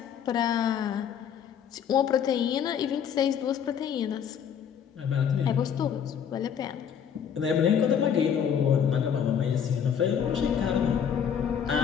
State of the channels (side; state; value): right; quieter; 8.1 dB